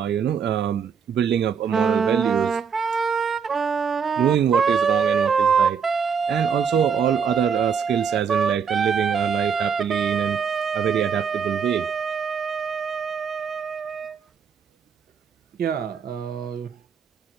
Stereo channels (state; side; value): quieter; left; 6.7 dB